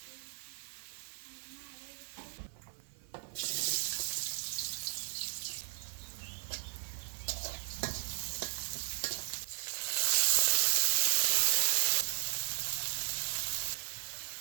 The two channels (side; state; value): left; silent; 54 dB below the other